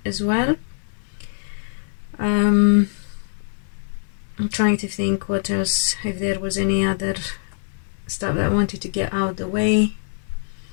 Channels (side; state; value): right; silent; digital silence